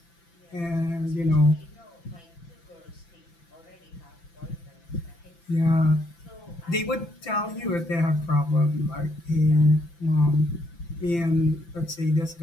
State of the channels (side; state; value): right; late; 5.9 ms